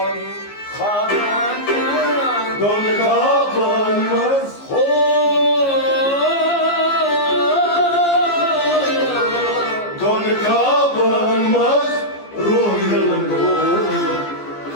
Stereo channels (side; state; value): right; late; 15 ms